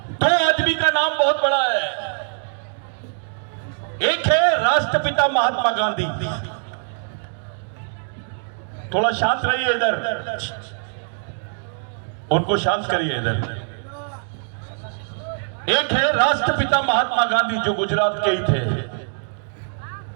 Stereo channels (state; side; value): silent; left; 64 dB below the other